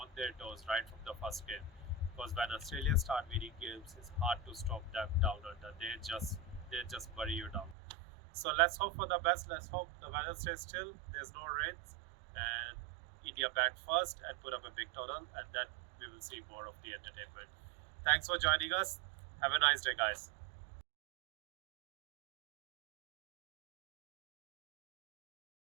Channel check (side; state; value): left; drops out; at 7.8 s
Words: their toes right from the first game. Because when Australia start winning games, it's hard to stop them down under. They just bury you down. So let's hope for the best. Let's hope the weather stays still. There's no rains, and India bat first and put up a big total, and then we will see more of the entertainment. Thanks for joining us. Have a nice day, guys.